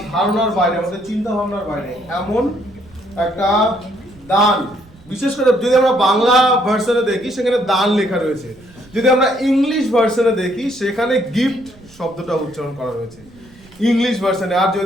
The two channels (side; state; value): right; noise; rumble, 25 dB below the sound